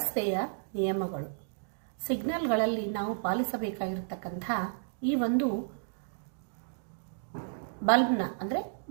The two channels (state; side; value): silent; left; digital silence